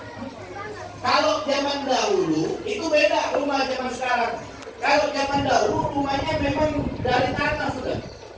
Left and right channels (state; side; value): identical; both; correlation 1.00